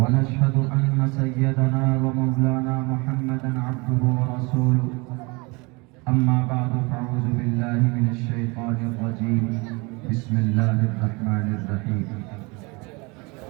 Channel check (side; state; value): left; quieter; 27.3 dB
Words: أن سيدنا ومولانا محمدا عبده ورسوله أما بعد فأعوذ بالله من الشيطان الرجيم بسم الله الرحمن الرحيم